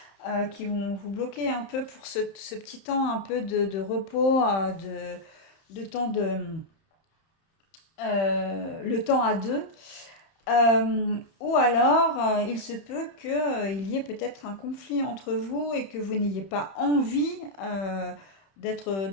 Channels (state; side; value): late; right; 31 ms